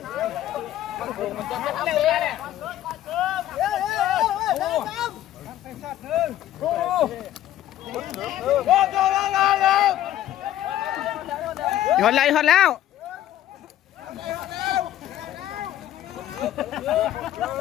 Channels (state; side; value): quieter; right; 12.6 dB